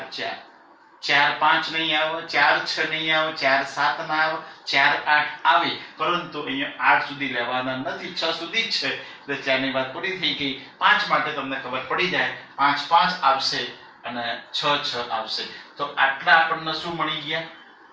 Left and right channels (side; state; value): both; identical; correlation 1.00